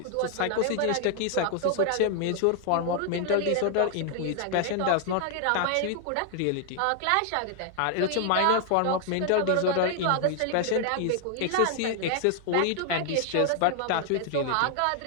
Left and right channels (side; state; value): both; different; correlation 0.00